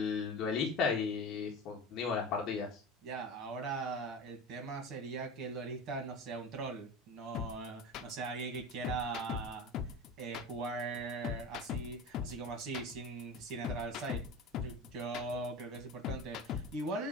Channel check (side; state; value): both; normal; correlation 0.30